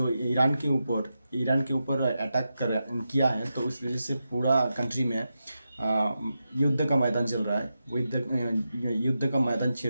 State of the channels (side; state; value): both; inverted; correlation -0.89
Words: ईरान के ऊपर अटैक कर किया है, तो उस वजह से पूरा कंट्री में युद्ध का मैदान चल रहा है। वो युद्ध का मैदान